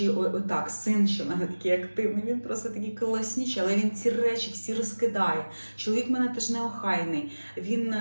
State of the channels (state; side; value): inverted; both; correlation -1.00